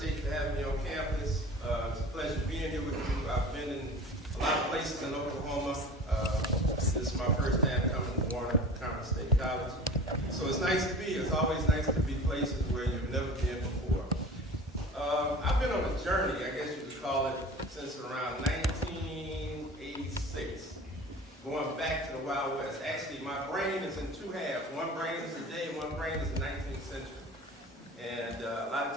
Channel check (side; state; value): both; normal; correlation 0.39